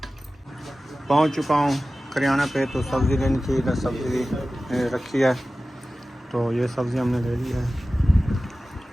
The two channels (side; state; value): both; normal; correlation 0.96